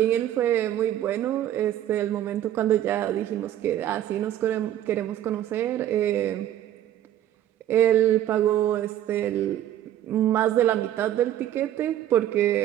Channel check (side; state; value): left; quieter; 11.9 dB